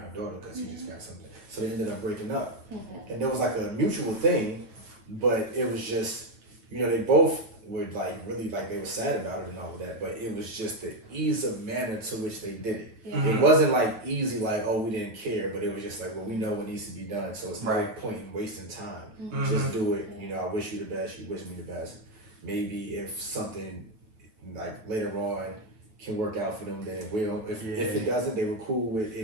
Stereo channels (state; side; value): late; left; 9.1 ms